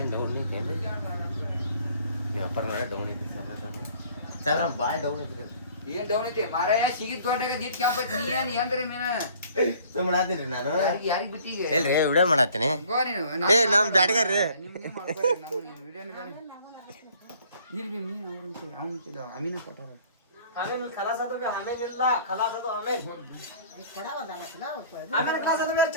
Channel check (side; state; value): both; inverted; correlation -0.54